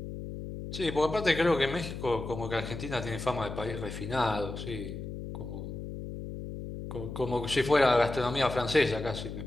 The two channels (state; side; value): noise; left; hum, 8 dB below the sound